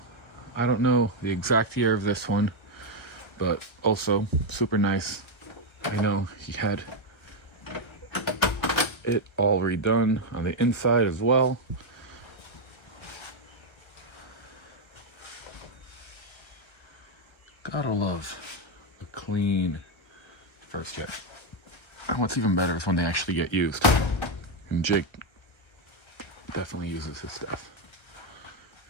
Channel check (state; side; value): late; right; 1.3 ms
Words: I don't know the exact year of this one, but also super nice. I know he had it all redone on the inside as well. Gotta love the clean first jet. And what's even better is when they actually get used. And Jake definitely uses his stuff.